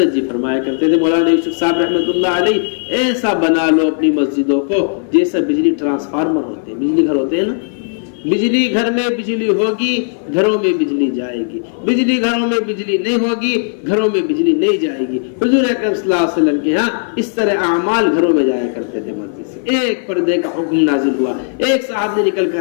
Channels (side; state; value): right; silent; 59 dB below the other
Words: جی فرمایا کرتے تھے مولانا یوسف صاحب رحمۃ اللہ علیہ، ایسا بنا لو اپنی مسجدوں کو جیسا بجلی ٹرانسفارمر ہوتے ہیں، بجلی گھر ہوتے ہیں نا، بجلی گھر میں بجلی ہوگی گھروں میں بجلی جائے گی، بجلی گھروں میں بجلی نہیں ہوگی گھروں میں بجلی نہیں جائے گی۔ حضور اکرم صلی اللہ علیہ وسلم کے ہاں اس طرح اعمال گھروں میں جایا کرتے تھے مسجد سے۔ ایک پردے کا حکم نازل ہوا، ایک صاحب نے نکل